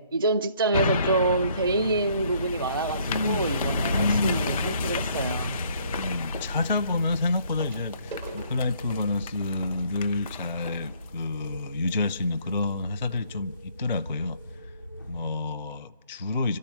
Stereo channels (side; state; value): both; inverted; correlation -0.63